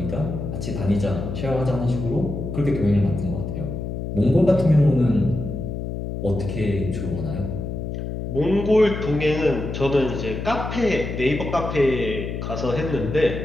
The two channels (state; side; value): noise; left; hum, 5 dB below the sound